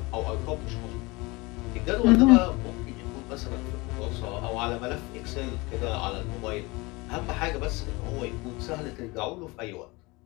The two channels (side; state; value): right; quieter; 24.3 dB